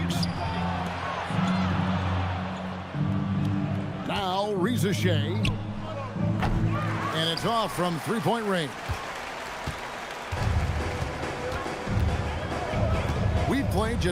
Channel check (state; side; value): identical; both; correlation 1.00